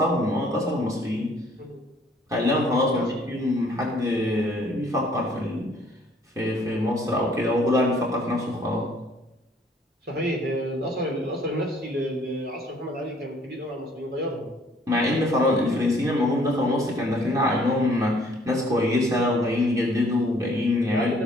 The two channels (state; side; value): normal; both; correlation 0.60